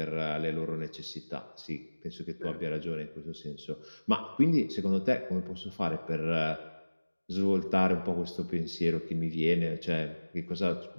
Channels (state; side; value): inverted; both; correlation -1.00